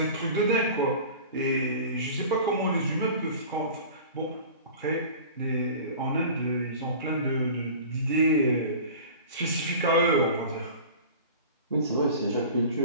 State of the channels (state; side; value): inverted; both; correlation -0.39